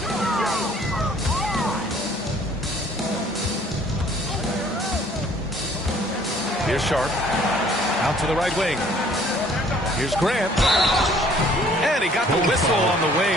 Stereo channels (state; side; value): normal; both; correlation 0.57